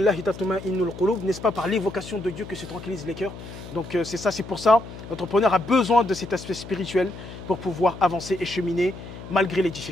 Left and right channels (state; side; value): noise; left; hum, 13 dB below the sound